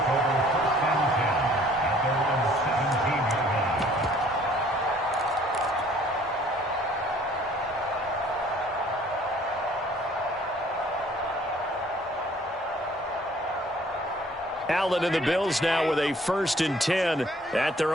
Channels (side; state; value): both; normal; correlation 0.57